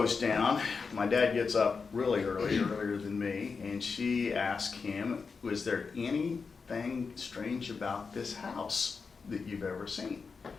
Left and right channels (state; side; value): quieter; right; 5.0 dB